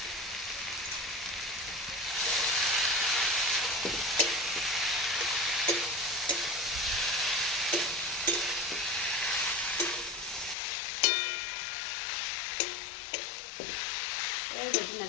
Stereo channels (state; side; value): drops out; right; at 10.6 s